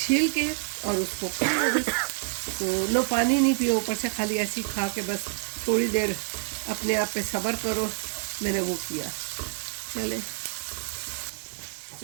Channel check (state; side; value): silent; left; digital silence